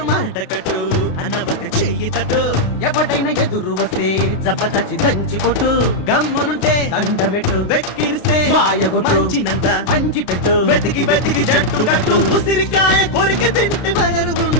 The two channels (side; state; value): right; late; 33 ms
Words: మాటకట్టు అన్నవత చెయ్యి తట్టు, ఎవడైనా ఎదురు వస్తే జబదచి దంచి కొట్టు. గమ్మునుంటే దండమెట్టు, వెక్కిరిస్తే మంచినంత పంచి పెట్టు. వెతికి వెతికి జట్టు కట్టు, ఉసిరికాయ కొరికి తింటి